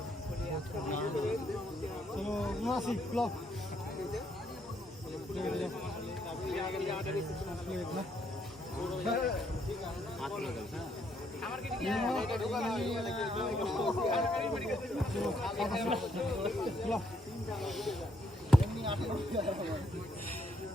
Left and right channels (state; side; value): normal; both; correlation 0.72